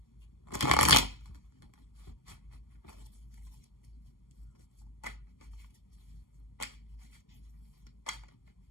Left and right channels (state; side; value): late; right; 0.91 ms